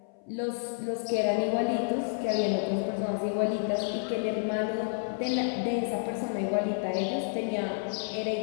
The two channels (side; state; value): right; silent; 56 dB below the other